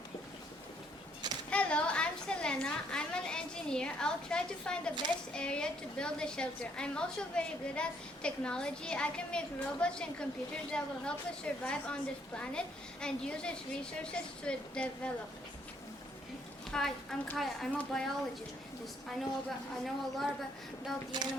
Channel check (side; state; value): both; normal; correlation 0.68